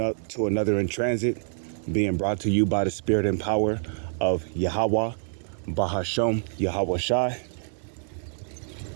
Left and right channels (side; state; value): left; silent; 60 dB below the other